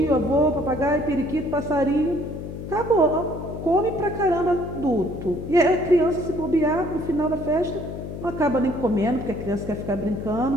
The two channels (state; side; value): noise; left; hum, 8 dB below the sound